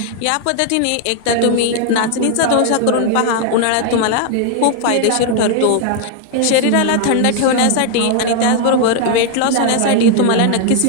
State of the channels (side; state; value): both; different; correlation 0.00